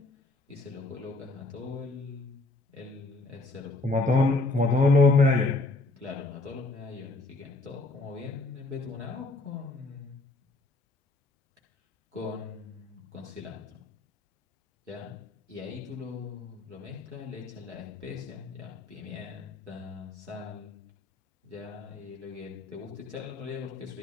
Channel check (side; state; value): right; quieter; 3.0 dB